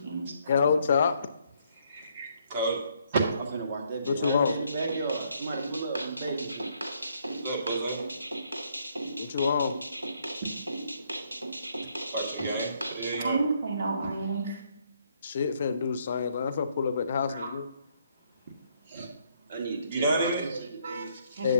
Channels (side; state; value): both; inverted; correlation -0.70